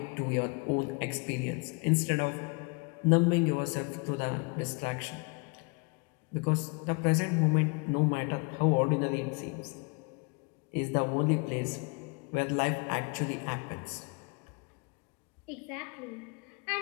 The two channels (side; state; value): right; quieter; 31.7 dB